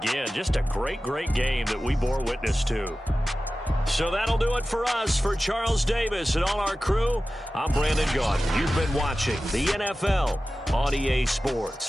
just a great, great game that we bore witness to. So that'll do it for us. For Charles Davis and all our crew, I'm Brandon Gaudin. You've been watching the NFL on EA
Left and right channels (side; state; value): both; normal; correlation 0.95